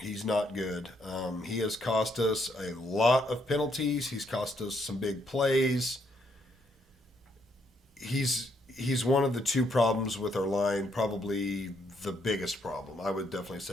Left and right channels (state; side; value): normal; both; correlation 0.73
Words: not good. He has cost us a lot of penalties. He's cost us some big plays. He's one of the 2 problems with our line, probably the biggest problem. I would definitely